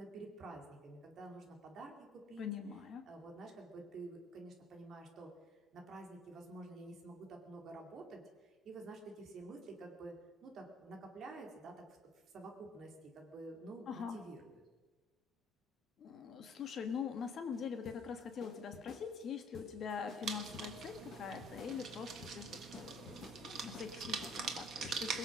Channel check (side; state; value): both; normal; correlation 0.59